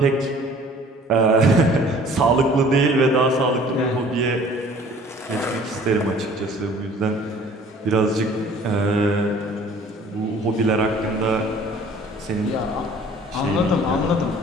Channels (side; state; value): both; normal; correlation 0.51